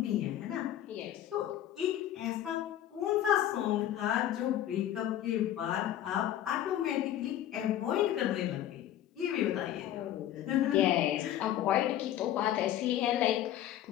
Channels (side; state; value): right; quieter; 12.0 dB